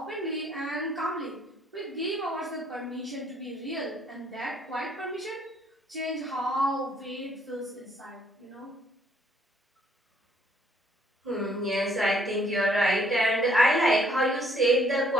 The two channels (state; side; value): normal; both; correlation 0.65